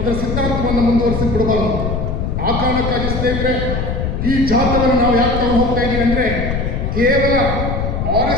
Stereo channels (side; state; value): left; noise; rumble, 2 dB below the sound